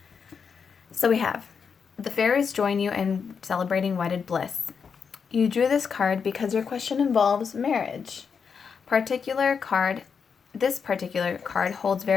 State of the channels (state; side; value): quieter; right; 6.1 dB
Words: So we have the fairies join you in celebrating wedded bliss. You drew this card because your question involves marriage. This particular card holds